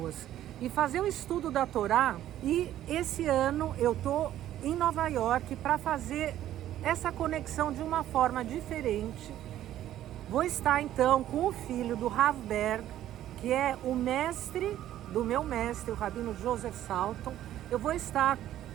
E fazer o estudo da Torá, e esse ano eu estou em Nova York para fazer essa conexão de uma forma diferente. Vou estar então com o filho do Rav Berg, que é o mestre do meu mestre, o Rabino Joseph Salton. Eu vou estar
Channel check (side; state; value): left; quieter; 12.5 dB